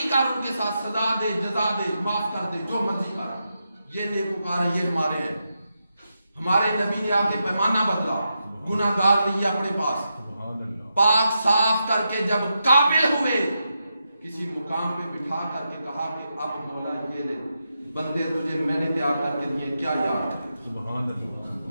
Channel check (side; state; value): both; inverted; correlation -0.86